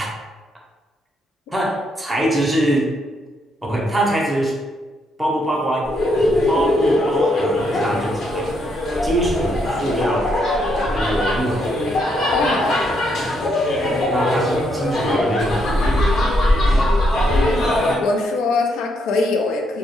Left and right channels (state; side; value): normal; both; correlation 0.76